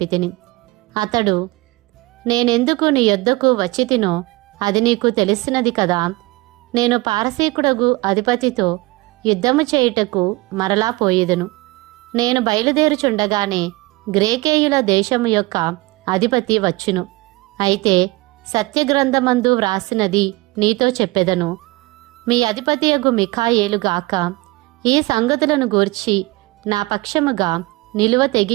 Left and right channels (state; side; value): quieter; left; 22.6 dB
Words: అతడు, నేనెందుకు నీ యొద్దకు వచ్చితినో అది నీకు తెలిసినది కదా. నేను పారసీకుడగు అధిపతితో యుద్ధము చేయుటకు మరలా పోయేదను. నేను బయలుదేరుచుండగానే గ్రేకేయుల దేశము యొక్క అధిపతి వచ్చును. అయితే సత్యగ్రంథమందు వ్రాసినది నీతో చెప్పెదను. మీ అధిపతియగు మిఖాయేలుగాక ఈ సంగతులను గూర్చి నా పక్షముగా నిలువ